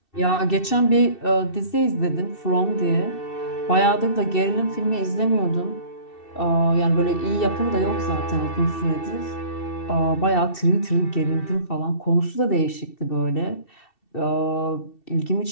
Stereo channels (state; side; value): late; right; 2.7 ms